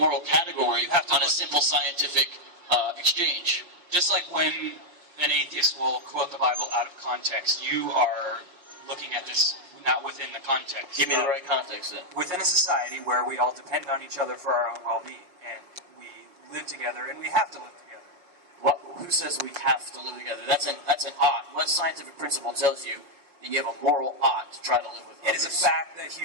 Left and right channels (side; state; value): left; late; 5.6 ms